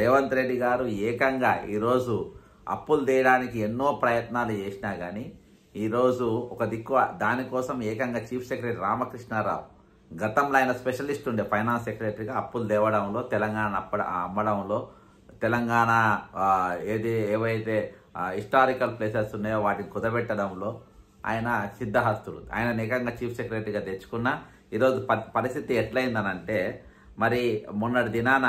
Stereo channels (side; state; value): both; identical; correlation 1.00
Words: రెడ్డి గారు ఏకంగా ఈరోజు అప్పులు తీయడానికి ఎన్నో ప్రయత్నాలు చేసినా కానీ ఈరోజు ఒక దిక్కు దానికోసం ఏకంగా చీఫ్ సెక్రటరీ రామకృష్ణారావు, గతంలో ఆయన స్పెషలిస్ట్ ఉండే ఫైనాన్స్ సెక్రటరీగా అప్పులు తేవడంలో, తెలంగాణ అమ్మడంలో, తెలంగాణ ఏవైతే హిస్టారికల్ ప్లేసెస్ ఉన్నాయో వాటిని కుదబెట్టడంలో ఆయన సిద్ధహస్తుడు. ఆయన ఏకంగా చీఫ్ సెక్రటరీగా తెచ్చుకున్న ఈరోజు పరిస్థితి ఎట్లయిందనంటే, మరి మొన్నటి దినాన